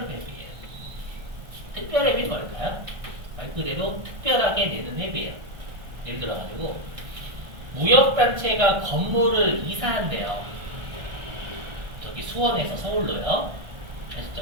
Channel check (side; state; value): left; late; 1.4 ms